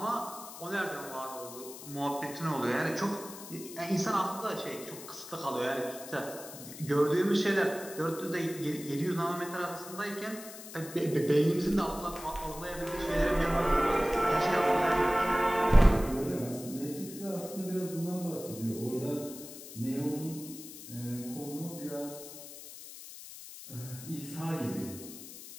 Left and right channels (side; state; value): left; noise; hiss, 14 dB below the sound